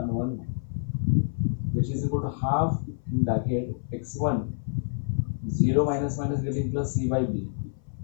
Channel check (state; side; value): silent; right; 57 dB below the other